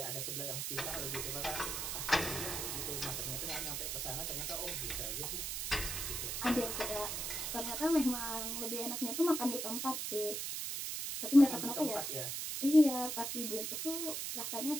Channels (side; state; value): right; noise; hiss, 2 dB below the sound